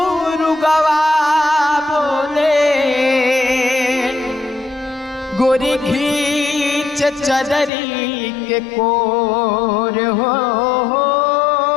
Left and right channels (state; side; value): drops out; right; at 7.7 s